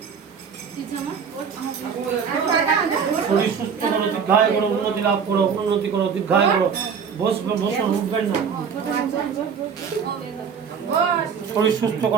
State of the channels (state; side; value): quieter; left; 6.7 dB